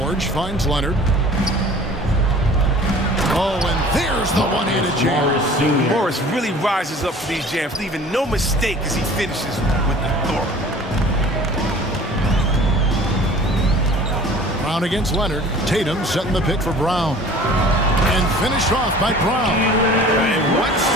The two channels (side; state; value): both; normal; correlation 0.46